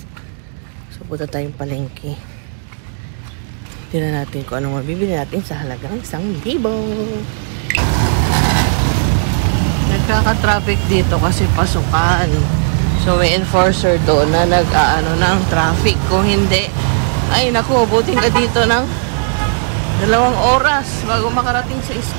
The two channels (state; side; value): silent; left; digital silence